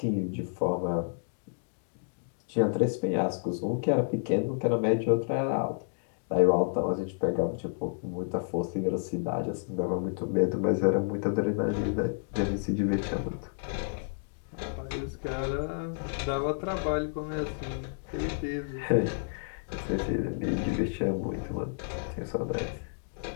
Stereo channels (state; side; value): silent; right; digital silence